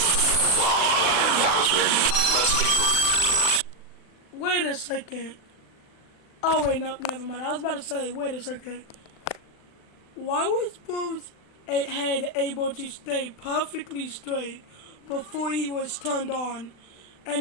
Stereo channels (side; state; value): right; late; 39 ms